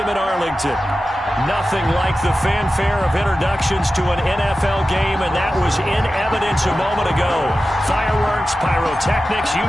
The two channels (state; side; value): normal; both; correlation 0.93